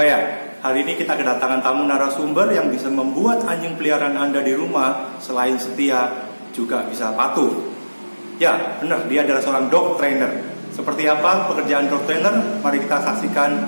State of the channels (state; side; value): inverted; both; correlation -1.00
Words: Hari ini kita kedatangan tamu narasumber yang bisa membuat anjing peliharaan Anda di rumah selain setia juga bisa patuh. Ya, benar, dia adalah seorang dog trainer. Seperti apa pekerjaan dog trainer? Mari kita saksikan